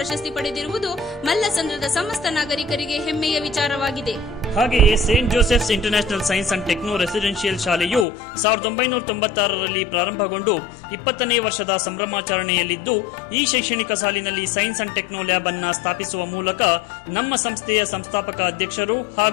ಪಡೆದಿರುವುದು ಮಲ್ಲಸಂದ್ರದ ಸಮಸ್ತ ನಾಗರಿಕರಿಗೆ ಹೆಮ್ಮೆಯ ವಿಚಾರವಾಗಿದೆ. ಹಾಗೆಯೇ Saint Joseph's international science and techno residential ಶಾಲೆಯು 1996ರಲ್ಲಿ ಪ್ರಾರಂಭಗೊಂಡು 20ನೇ ವರ್ಷದ ಸಂಭ್ರಮಾಚರಣೆಯಲ್ಲಿದ್ದು, ಈ ಶೈಕ್ಷಣಿಕ ಸಾಲಿನಲ್ಲಿ ಸೈನ್ಸ್ ಅಂಡ್ ಟೆಕ್ನೋ ಲ್ಯಾಬ್ ಅನ್ನು ಸ್ಥಾಪಿಸುವ ಮೂಲಕ ನಮ್ಮ ಸಂಸ್ಥೆಯ ಸಂಸ್ಥಾಪಕ ಅಧ್ಯಕ್ಷರು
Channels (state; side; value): drops out; right; at 8.1 s